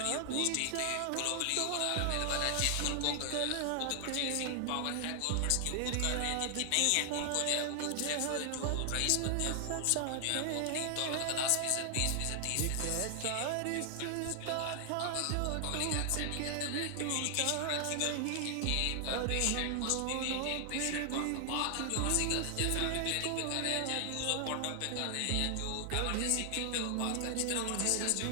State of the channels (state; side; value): different; both; correlation 0.00